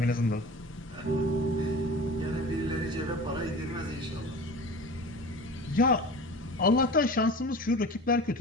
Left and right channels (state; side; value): normal; both; correlation 0.36